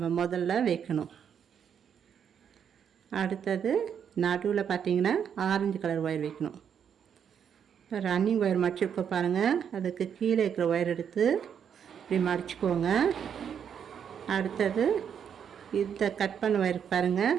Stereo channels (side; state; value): left; quieter; 8.0 dB